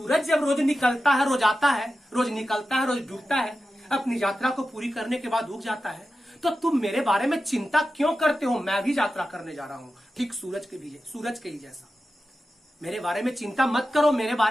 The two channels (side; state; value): both; normal; correlation 0.92